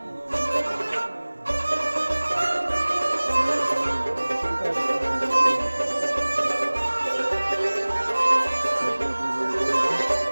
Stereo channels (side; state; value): both; inverted; correlation -1.00